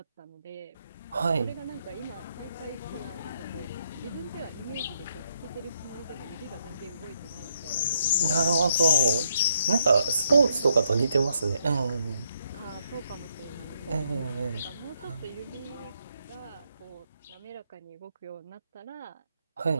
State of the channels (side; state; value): both; inverted; correlation -0.75